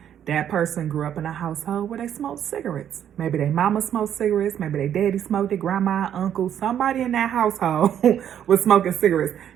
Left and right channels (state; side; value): quieter; left; 9.7 dB